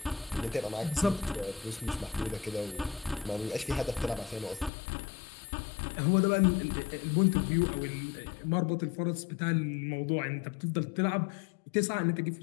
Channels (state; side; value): drops out; right; at 4.7 s